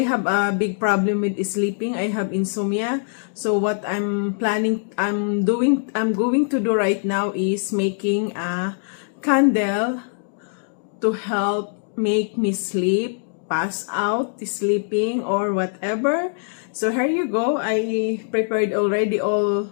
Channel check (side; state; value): right; silent; digital silence